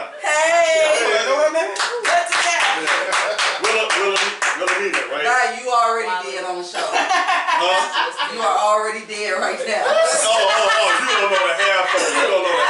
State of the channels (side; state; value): both; identical; correlation 1.00